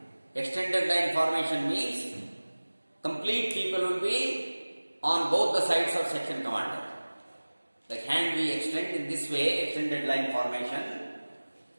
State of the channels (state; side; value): inverted; both; correlation -1.00